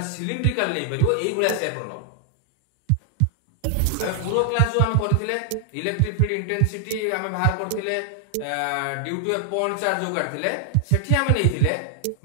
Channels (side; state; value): both; different; correlation 0.00